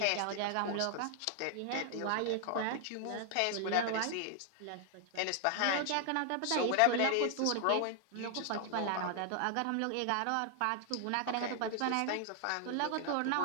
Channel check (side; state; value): both; different; correlation 0.00